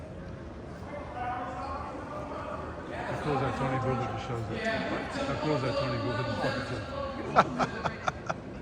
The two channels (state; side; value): identical; both; correlation 1.00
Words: cool is that Tony Booth that just shows up? How cool is that Tony Booth that just fucking